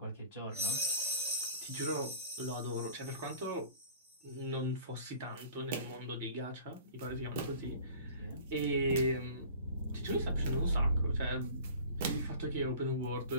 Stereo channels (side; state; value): both; inverted; correlation -0.44